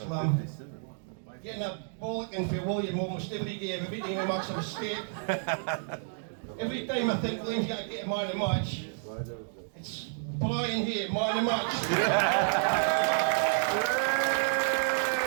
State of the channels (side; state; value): left; silent; digital silence